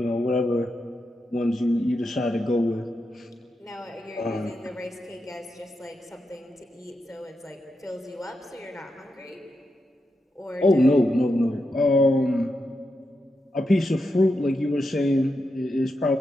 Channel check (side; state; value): both; normal; correlation 0.86